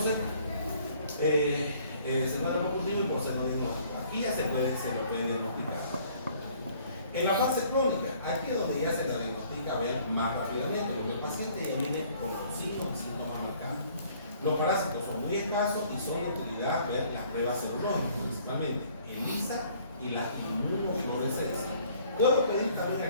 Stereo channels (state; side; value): inverted; both; correlation -0.58